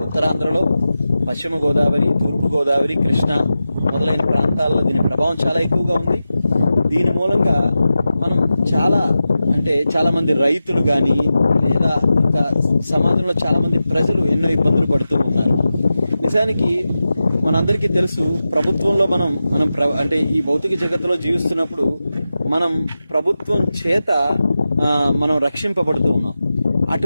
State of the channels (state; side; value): inverted; both; correlation -0.92